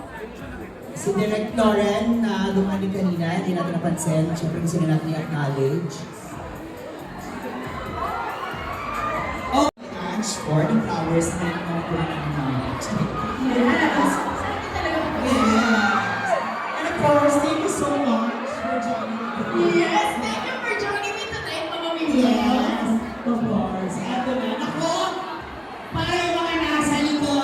Si Direct Lauren na dumani kanina, hindi natin napansin. Siyempre gusto na natin i-acknowledge. Oh, Ange, for the flowers na acknowledge. Yes! Yes. And of course, thank you so much for joining me. Yes! Thank you for joining me tonight, Mama Mimi. Yes, of course. Eto na. Ako, para yung mga nasa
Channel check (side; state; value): both; identical; correlation 1.00